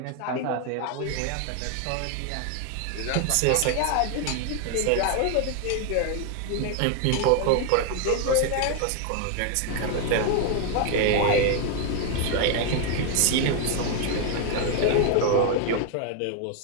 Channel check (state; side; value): different; both; correlation 0.01